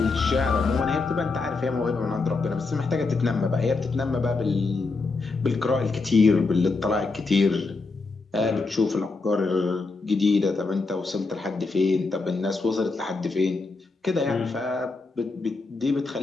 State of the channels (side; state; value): right; quieter; 3.8 dB